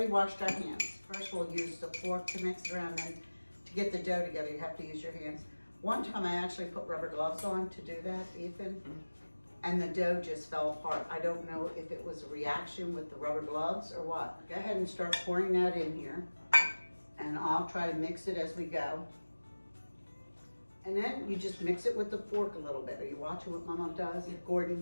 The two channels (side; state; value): both; inverted; correlation -1.00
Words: washed our hands. First we'll use the fork to mix it around, then to get the dough together you have to use your hands. One time I actually put rubber gloves on to do that, Ethan, and the dough just fell apart. I don't know if it was a reaction with the rubber gloves or what. Go ahead and start pouring that in here, and I'll try to mix it as we go. And then you just mix it with the fork a little bit. Are you watching what Mama does,